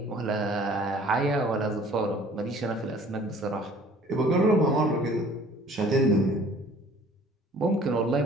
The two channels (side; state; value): both; normal; correlation 0.52